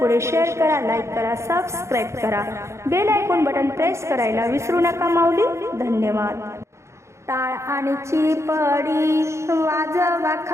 शेअर करा, लाईक करा, सबस्क्राईब करा, बेल आयकॉन बटन प्रेस करायला विसरू नका माऊली। धन्यवाद। टाळ आणि चिपडी वाजवा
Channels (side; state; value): left; late; 0.14 ms